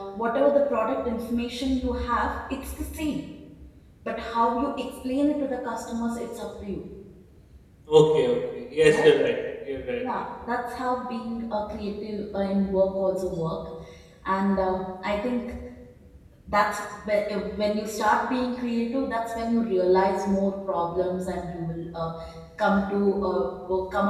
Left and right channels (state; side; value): identical; both; correlation 1.00